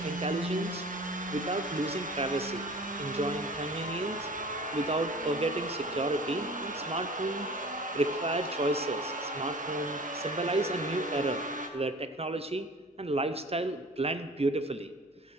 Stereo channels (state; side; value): normal; both; correlation 0.43